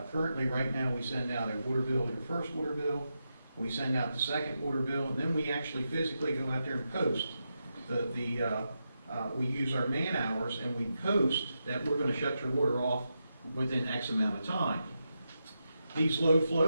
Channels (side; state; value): both; inverted; correlation -0.87